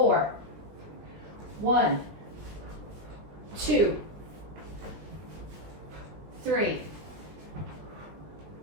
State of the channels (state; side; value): late; left; 20 ms